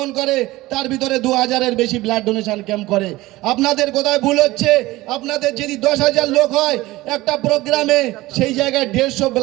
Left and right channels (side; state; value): left; quieter; 18.7 dB